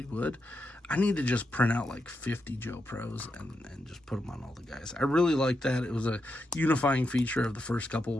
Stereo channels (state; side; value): normal; both; correlation 0.85